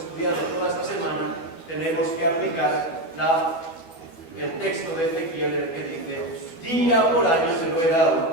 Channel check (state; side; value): late; right; 12 ms